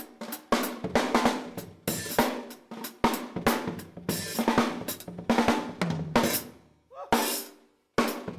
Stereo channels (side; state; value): both; identical; correlation 1.00